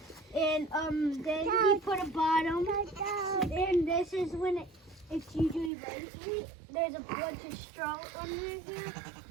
and then he put a bottom, and this is when it's usually rainy. There's a bunch of straw under here,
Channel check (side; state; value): left; drops out; at 5.7 s